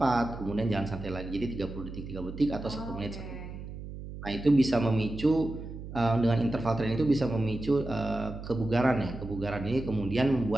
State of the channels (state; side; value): noise; right; hum, 10 dB below the sound